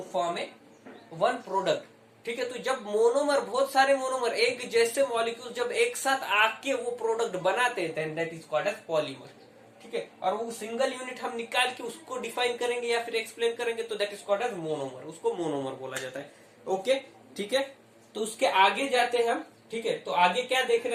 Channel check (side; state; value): both; identical; correlation 1.00